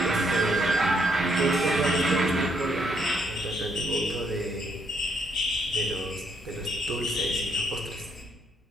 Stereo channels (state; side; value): normal; both; correlation 0.72